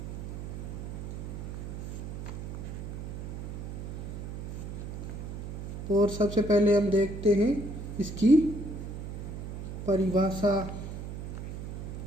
और सबसे पहले हम देखते हैं इसकी परिभाषा।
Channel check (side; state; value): right; noise; hum, 7 dB below the sound